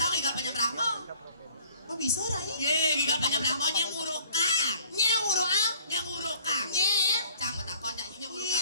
gigal panyembrah mau. Oh bisa Rai Ye gigal panyembrah mau nyemurukang. Nyeng urung ah Nyemurukang. Nyeng Cang betakon nyanyi nyemurukang.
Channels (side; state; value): both; inverted; correlation -0.55